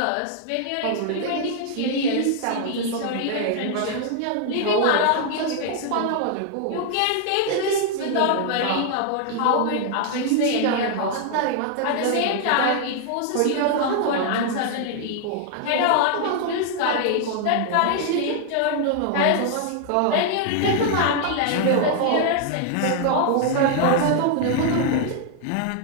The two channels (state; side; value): different; both; correlation 0.00